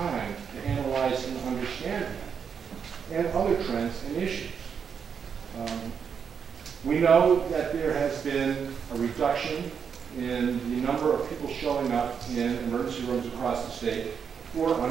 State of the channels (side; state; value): left; quieter; 6.9 dB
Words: to analyze and understand that, and other trends and issues. We know that there has been a reduction in the number of people showing up in emergency rooms across the state who are